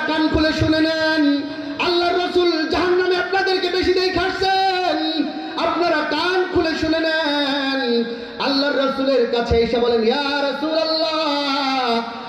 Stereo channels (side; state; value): both; identical; correlation 1.00